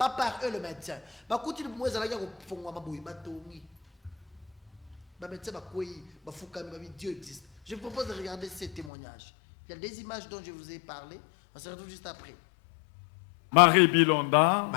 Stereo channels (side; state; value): right; drops out; at 8.9 s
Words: par eux le médecin ba kutili bumu ezala ya ko fongwa maboyi batongi ba médecin ba koyi ba fukami ba Dieu existe. Je vous propose de regarder ces témoignages. Il y a des images dont je vous ai parlé, on se retrouve juste après. Marie